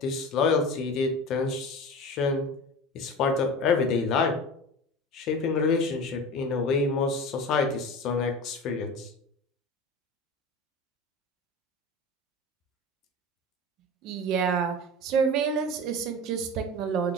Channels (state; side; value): normal; both; correlation 0.32